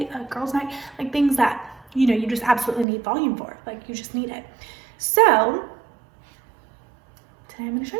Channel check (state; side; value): drops out; left; at 2.9 s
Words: a girls' night, like things that, you know, you just absolutely need volume for. Like you just need it. So today I'm gonna show